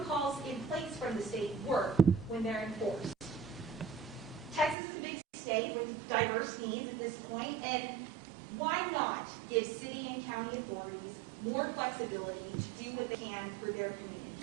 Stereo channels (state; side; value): drops out; left; at 4.8 s